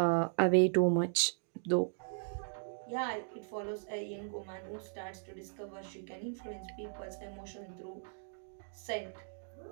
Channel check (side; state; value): left; silent; digital silence